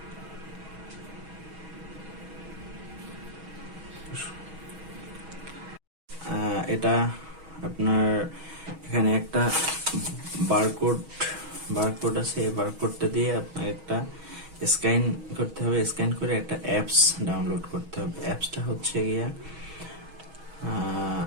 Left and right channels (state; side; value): late; left; 6.3 ms